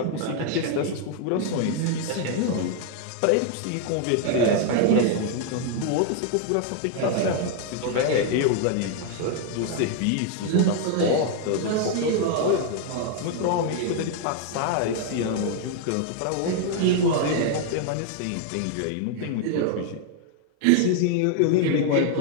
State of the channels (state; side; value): different; both; correlation 0.00